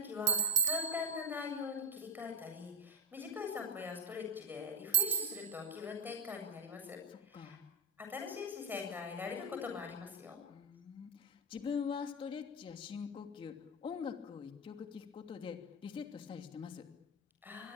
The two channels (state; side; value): normal; both; correlation -0.01